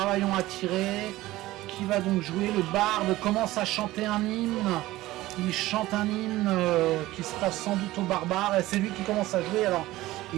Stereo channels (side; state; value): left; quieter; 17.3 dB